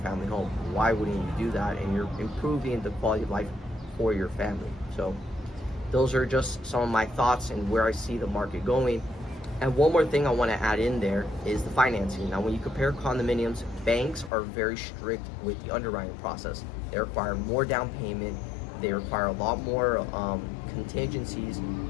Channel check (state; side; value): drops out; right; at 14.3 s